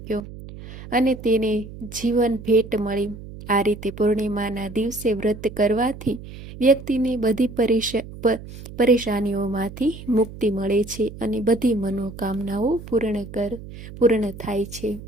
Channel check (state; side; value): noise; right; hum, 14 dB below the sound